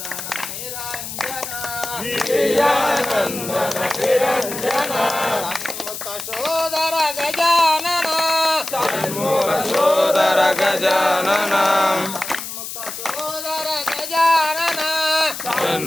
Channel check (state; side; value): noise; left; hiss, 8 dB below the sound